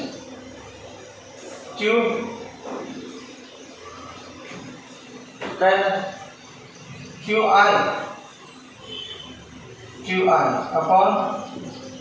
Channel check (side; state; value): both; identical; correlation 1.00